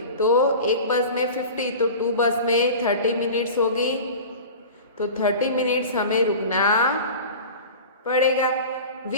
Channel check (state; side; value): inverted; both; correlation -0.35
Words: तो एक बस में 50 तो 2 बस में 30 मिनट्स होगी। तो 30 मिनट्स हमें रुकना पड़ेगा।